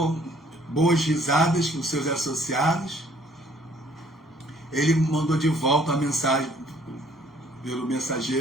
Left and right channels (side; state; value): both; normal; correlation 0.61